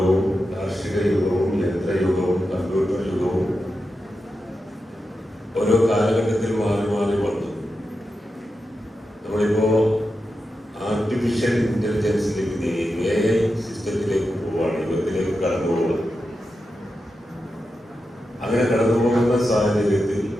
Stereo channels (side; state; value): both; normal; correlation 0.89